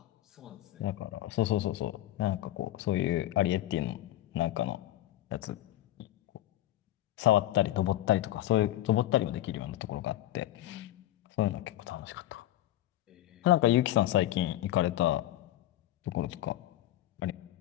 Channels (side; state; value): right; quieter; 14.3 dB